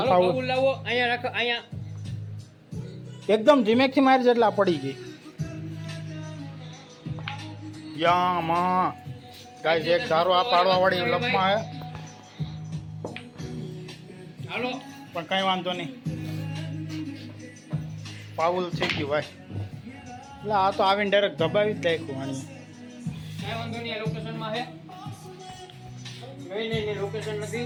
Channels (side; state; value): both; identical; correlation 1.00